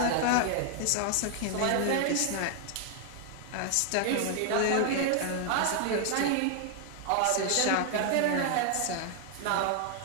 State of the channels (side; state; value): both; different; correlation 0.00